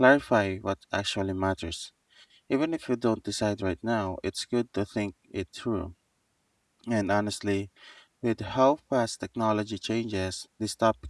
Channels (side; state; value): both; identical; correlation 1.00